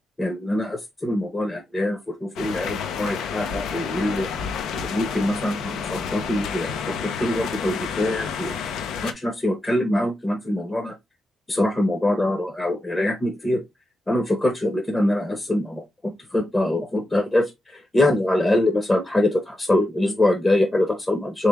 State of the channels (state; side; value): normal; both; correlation 0.87